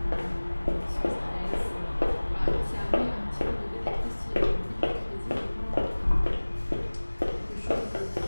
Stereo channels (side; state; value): both; inverted; correlation -1.00